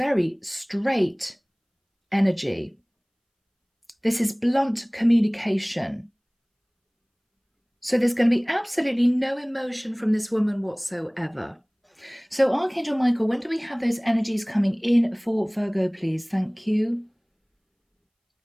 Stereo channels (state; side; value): identical; both; correlation 1.00